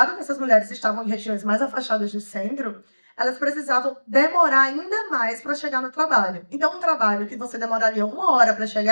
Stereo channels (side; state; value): both; inverted; correlation -1.00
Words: que essas mulheres estavam em regiões mais afastadas do centro, elas precisavam demorar ainda mais para chegar no trabalho. Então, um trabalho que você demoraria 1 hora para